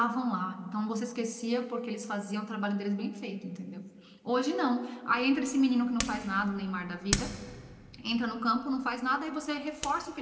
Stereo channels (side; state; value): both; identical; correlation 1.00